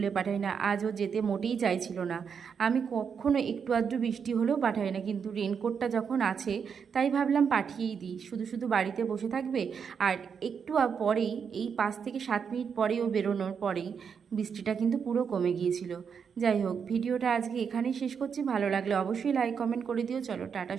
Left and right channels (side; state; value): left; quieter; 6.7 dB